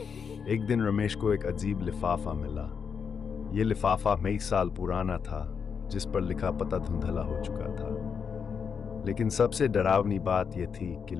एक दिन रमेश को एक अजीब लिफाफा मिला। ये लिफाफा कई साल पुराना था, जिस पर लिखा पता धुंधला हो चुका था। लेकिन सबसे डरावनी बात यह थी कि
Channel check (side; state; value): right; quieter; 6.4 dB